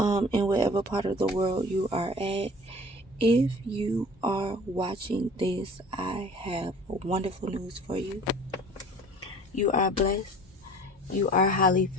whatever part of the world you are at. If you are watching this, I have wonderful news for you. You are blessed. You are highly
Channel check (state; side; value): normal; both; correlation 0.46